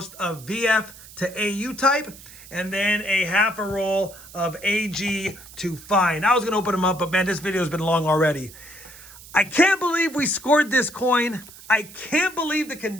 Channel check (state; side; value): noise; right; hiss, 18 dB below the sound